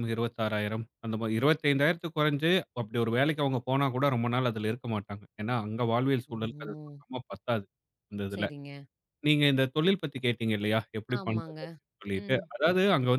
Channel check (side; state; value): both; identical; correlation 1.00